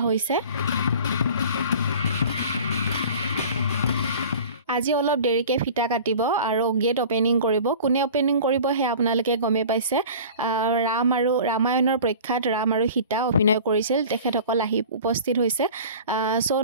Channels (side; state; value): both; inverted; correlation -0.41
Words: হৈছে আজি অলপ দেৰিকে ফিটা কাটিব আৰু গেট ওপেনিং কৰিব কোনে ওপেনিং কৰিব হে আপোনালোকে গমে পাইছে ৰাম আৰু ৰামায়ণৰ প্ৰখ্যাত ৰাম আৰু সীতা অভিনয় কৰিছিল তেখেতসকল আহি উপস্থিত হৈছে সো